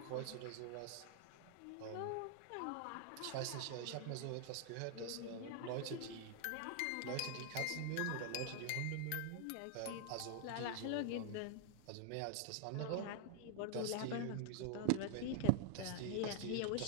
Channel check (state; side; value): different; both; correlation -0.01